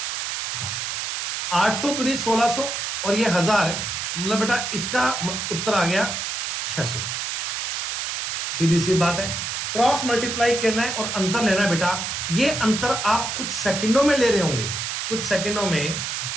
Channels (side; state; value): right; noise; hiss, 3 dB below the sound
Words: हाँ, 800 दूनी 1600 और ये 1000, मतलब बेटा इसका उत्तर आ गया 600। सीधी सी बात है, क्रॉस मल्टीप्लाई करना है और अंतर लेना है बेटा। ये अंतर आप कुछ सेकंडों में ले रहे होंगे, कुछ सेकंडों में।